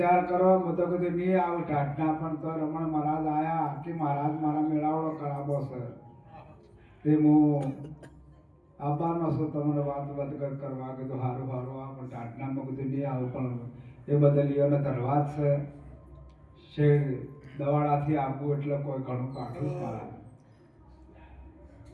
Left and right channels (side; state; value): both; identical; correlation 1.00